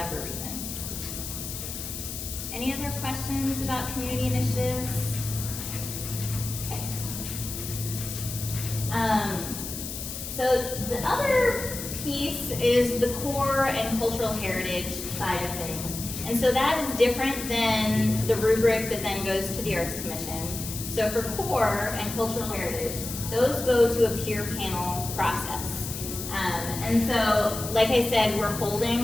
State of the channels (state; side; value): noise; left; hiss, 7 dB below the sound